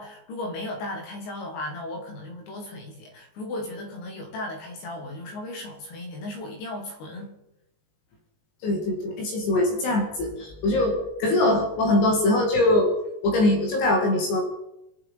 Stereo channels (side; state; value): right; late; 19 ms